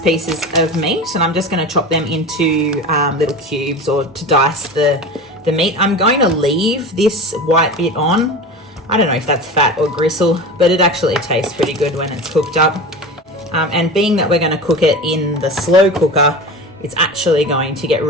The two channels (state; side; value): normal; both; correlation 0.31